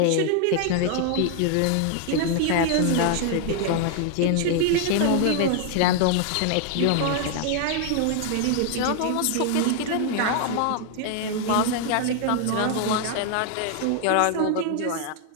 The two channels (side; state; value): both; different; correlation 0.00